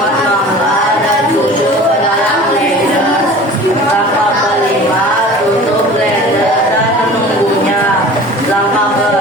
mangga dan susu ke dalam blender. Langkah kelima, tutup blender dan menunggunya. Langkah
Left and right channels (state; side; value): normal; both; correlation 0.41